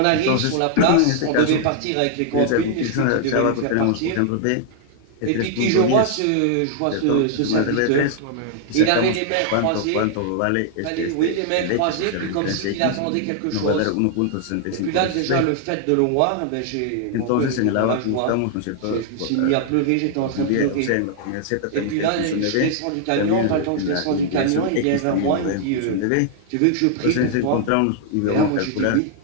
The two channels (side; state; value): both; different; correlation 0.00